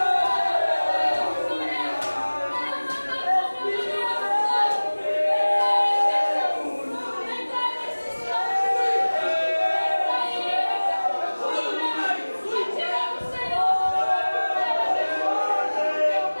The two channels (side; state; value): both; inverted; correlation -1.00